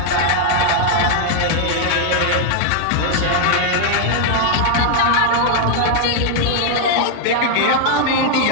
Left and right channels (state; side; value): different; both; correlation 0.00